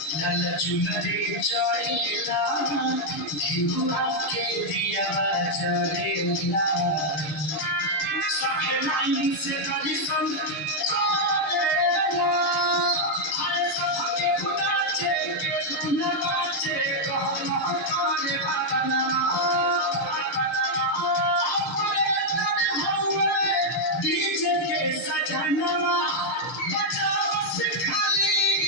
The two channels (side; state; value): right; late; 6.5 ms